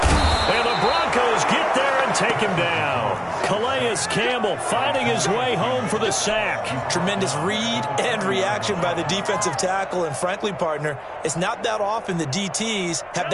And the Broncos get there and take him down. Calais Campbell finding his way home for the sack. Tremendous read and reaction by the defensive tackle. And frankly, partner, it's not that often the DTs have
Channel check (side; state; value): both; identical; correlation 1.00